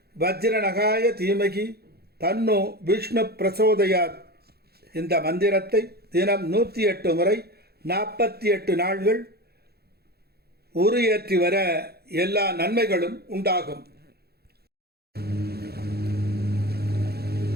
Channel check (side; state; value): left; late; 0.46 ms